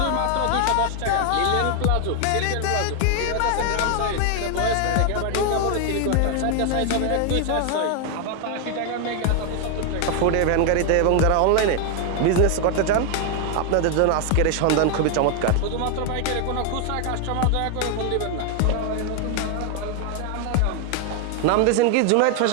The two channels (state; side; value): different; both; correlation 0.00